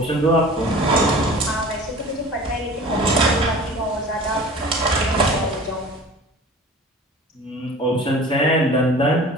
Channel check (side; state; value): both; normal; correlation 0.41